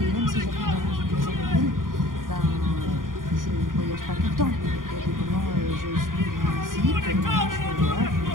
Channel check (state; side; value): late; left; 0.90 ms